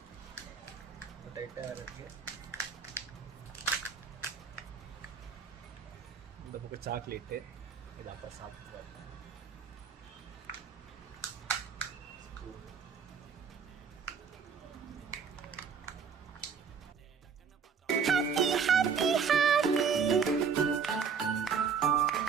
டைட்டாக இருக்குது. இந்த பக்கம் சாக்லேட்டு, இதை அப்போ சாப்பிட்டு பார்ப்பேன்.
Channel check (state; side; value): quieter; left; 6.3 dB